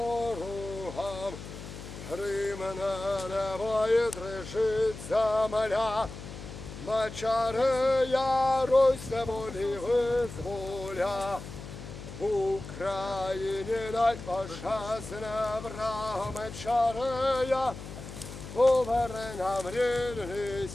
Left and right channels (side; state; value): left; noise; hum, 12 dB below the sound